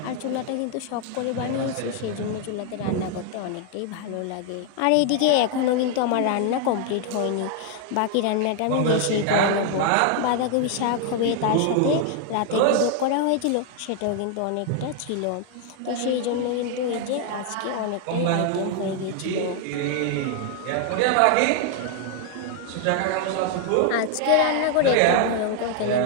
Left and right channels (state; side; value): different; both; correlation 0.00